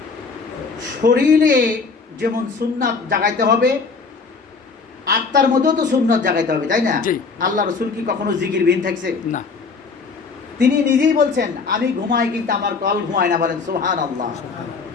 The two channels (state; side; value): quieter; right; 4.7 dB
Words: শরীরে যেমন সুন্নাত জাগাইতে হবে, আত্মার মধ্যেও তো সুন্নাত জাগাইতে হবে, তাই না? আল্লাহ রসুল কি কখনো জিকির বিহীন থাকছে? না। তিনি নিজেই বলছেন, আমি ঘুমাই কিন্তু আমার কল ঘুমায় না, বলেন সুবহানাল্লাহ।